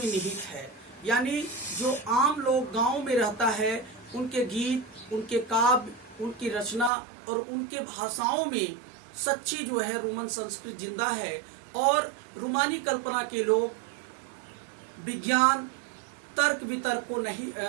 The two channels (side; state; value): left; drops out; at 6.9 s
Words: निहित है। यानी जो आम लोग गांव में रहता है, उनके गीत, उनके काव्य, उनकी रचना और उनके भाषाओं में सच्ची जो है रोमन संस्कृति जिंदा है। और रूमानी कल्पना के लोग विज्ञान, तर्क वितर्क को